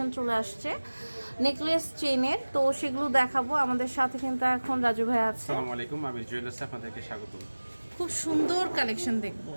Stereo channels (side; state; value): both; inverted; correlation -1.00